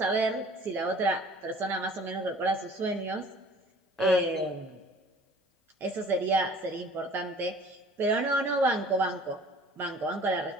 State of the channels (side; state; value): both; normal; correlation 0.50